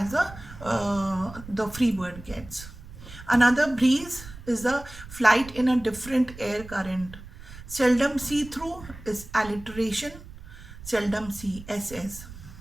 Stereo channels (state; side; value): noise; right; rumble, 16 dB below the sound